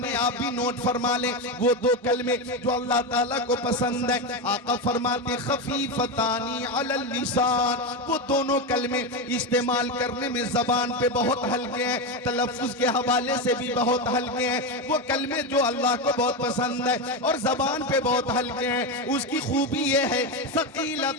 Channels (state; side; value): normal; both; correlation 0.13